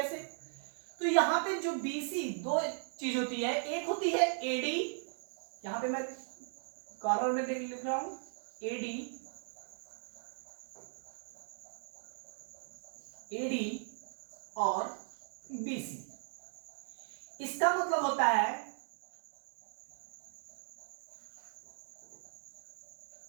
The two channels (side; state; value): left; silent; 52 dB below the other